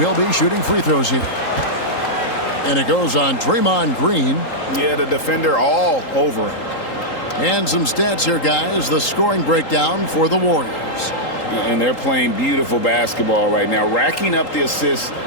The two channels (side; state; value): right; late; 3.8 ms